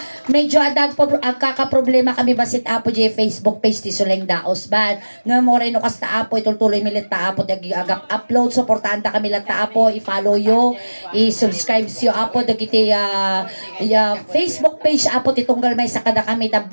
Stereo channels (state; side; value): inverted; both; correlation -1.00